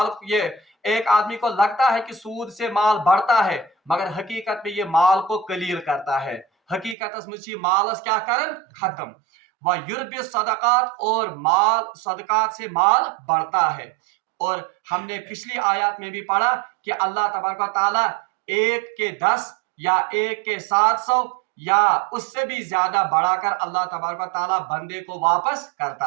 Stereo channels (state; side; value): drops out; left; at 7.0 s